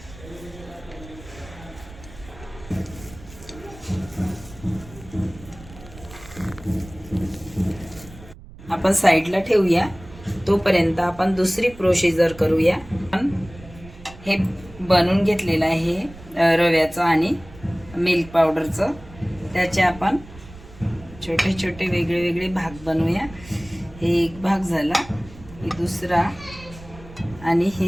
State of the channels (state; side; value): noise; right; rumble, 19 dB below the sound